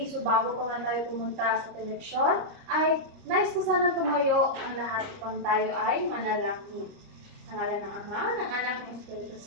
So bago pa nga tayo pumunta sa teleksyon ay nais ko sana tumayo ang lahat upang tayo ay manalangin. Sa ngalan ng Ama, ng Anak, ng Espiritu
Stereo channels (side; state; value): left; late; 30 ms